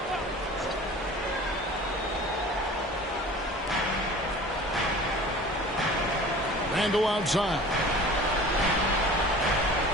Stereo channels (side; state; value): both; normal; correlation 0.42